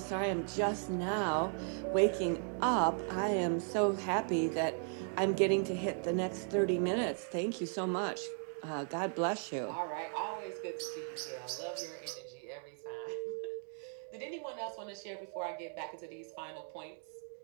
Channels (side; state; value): left; silent; 53 dB below the other